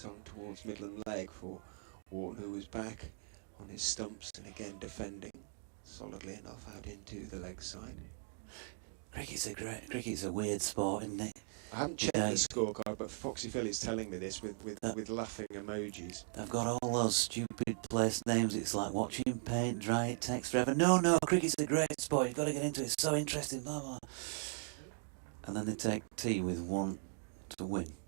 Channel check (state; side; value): silent; left; 52 dB below the other